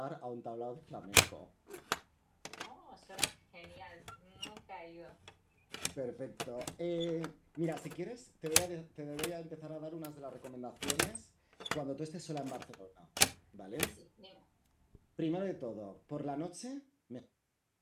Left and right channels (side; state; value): both; identical; correlation 1.00